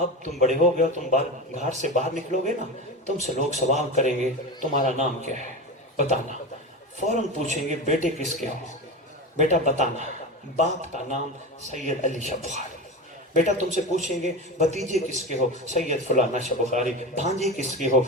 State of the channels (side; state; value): both; normal; correlation 0.24